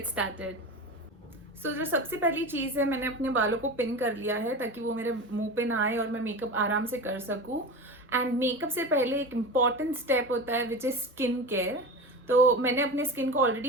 started. So जो सबसे पहली चीज़ है, मैंने अपने बालों को pin कर लिया है ताकि वो मेरे मुंह पे ना आए और मैं मेकअप आराम से कर सकूं. एंड मेकअप से पहले एक इम्पॉर्टेंट स्टेप होता है विच इज़ स्किन केयर. तो मैंने अपने स्किन को ऑलरेडी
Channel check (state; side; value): normal; both; correlation 0.27